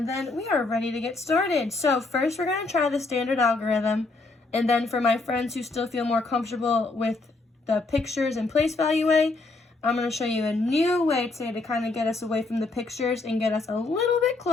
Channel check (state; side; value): quieter; right; 3.5 dB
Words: then we are ready to get started. So first we're going to try the standard algorithm. And then for my friends who still feel more comfortable with the pictures and place value way, I'm going to show you a new way today to kind of get us away from the pictures and get us a little bit